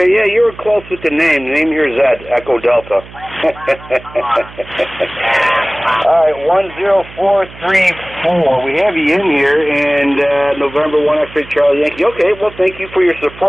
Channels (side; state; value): right; noise; hum, 19 dB below the sound